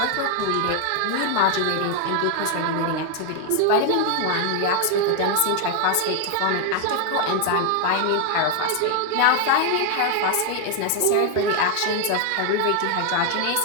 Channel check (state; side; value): different; both; correlation 0.00